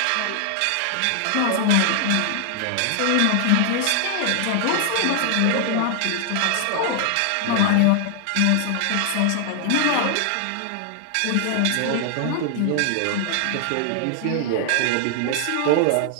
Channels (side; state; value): both; different; correlation 0.00